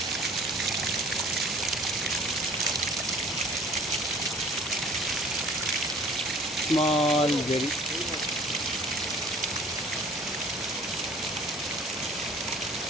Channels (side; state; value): both; normal; correlation 0.50